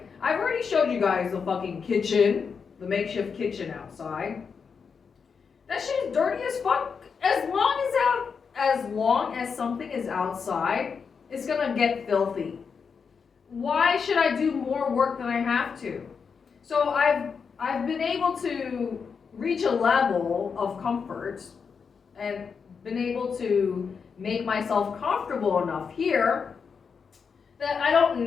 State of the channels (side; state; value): right; quieter; 5.9 dB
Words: I've already showed you guys the fucking kitchen, the makeshift kitchen outside. That shit is dirty as fuck. As long as something is outside, it's gonna get filthy. Why should I do more work than I have to? So I've I've been able to reach a level of comfort and been able to make myself comfortable enough here that I don't